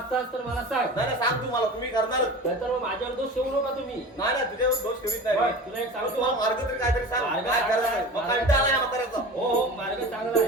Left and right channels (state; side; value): normal; both; correlation 0.35